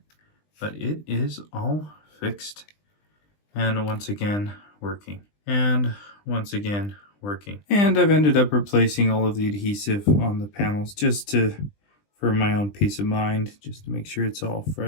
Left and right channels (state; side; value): late; right; 20 ms